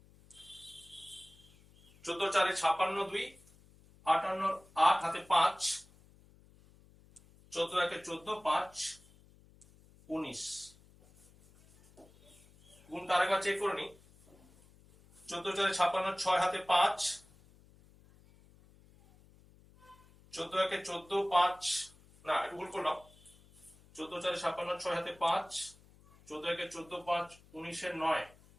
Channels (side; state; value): left; noise; hum, 26 dB below the sound